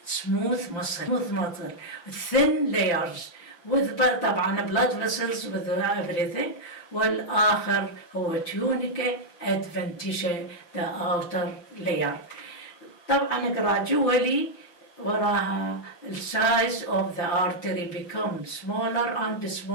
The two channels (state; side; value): late; right; 5.9 ms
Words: smooth muscle, thin layers with طبعا blood vessels with everything. والآخر هو tunica adventitia, the outer layer. طبعا gradually وراها the size of the artery becomes smaller and